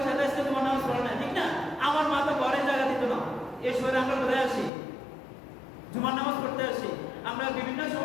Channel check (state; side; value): drops out; right; at 4.7 s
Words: সাথে আজকে জুমার নামাজ পড়ে নাই, ঠিক না? আমার মা তো ঘরে জায়গা দিত না। এই সময় আমরা কোথায় আসি? জুমার নামাজ পড়তে আসি। আমরা বিভিন্ন